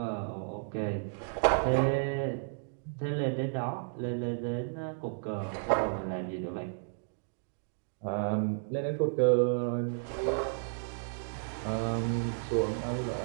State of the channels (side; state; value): left; silent; digital silence